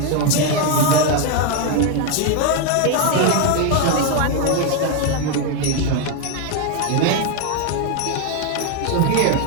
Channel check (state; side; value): different; both; correlation 0.01